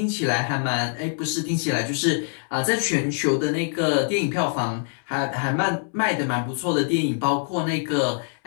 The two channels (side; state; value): right; silent; 62 dB below the other